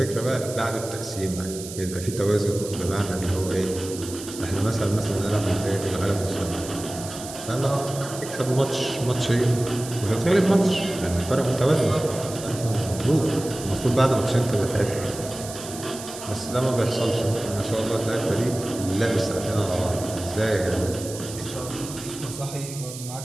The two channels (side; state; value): right; noise; hiss, 12 dB below the sound